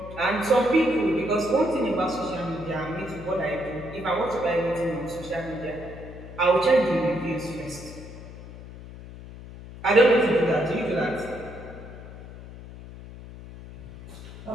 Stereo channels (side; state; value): left; noise; hum, 15 dB below the sound